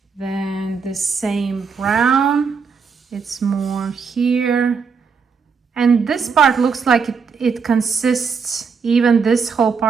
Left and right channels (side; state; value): left; quieter; 5.6 dB